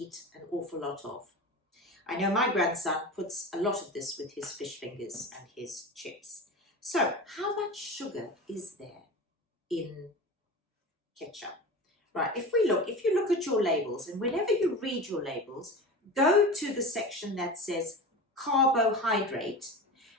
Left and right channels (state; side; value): normal; both; correlation 0.30